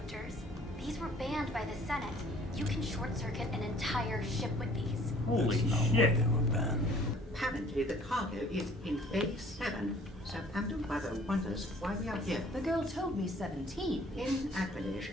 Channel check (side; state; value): both; normal; correlation 0.55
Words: These were banned by the Senate. You can short-circuit an entire ship with these. Holy shit. Apparently the cargo is in Bay 7, so Amdo Mother wonders why we are here. The girl told me 17. In Aquilish,